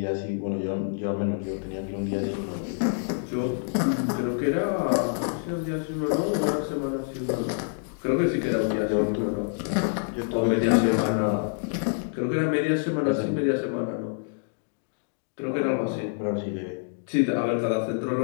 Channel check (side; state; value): right; silent; digital silence